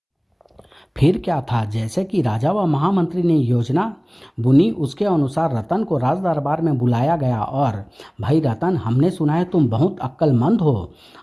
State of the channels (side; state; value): both; identical; correlation 1.00